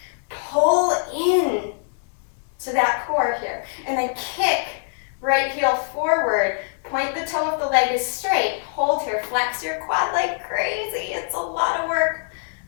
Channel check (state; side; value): silent; right; 63 dB below the other